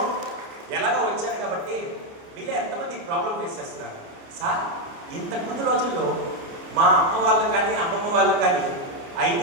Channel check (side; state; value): left; late; 30 ms